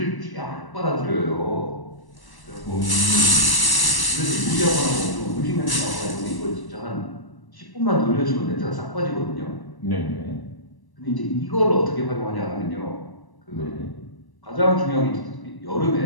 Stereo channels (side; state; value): right; late; 1.1 ms